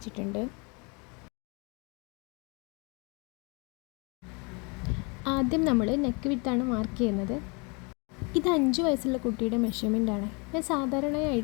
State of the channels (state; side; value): quieter; right; 31.1 dB